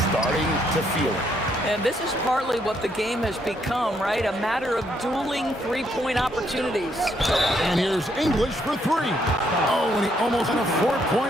starting to feel it. And this is partly what the game has become, right? A matter of dueling three-point opportunities. And here's English for 3. Oh, and he almost had a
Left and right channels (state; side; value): normal; both; correlation 0.73